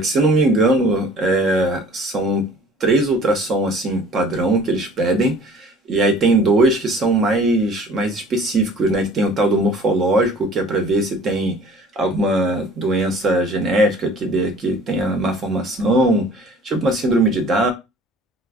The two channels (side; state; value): both; normal; correlation 0.49